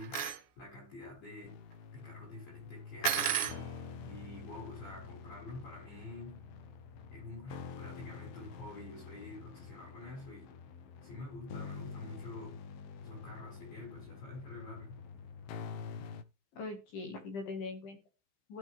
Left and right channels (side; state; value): right; late; 15 ms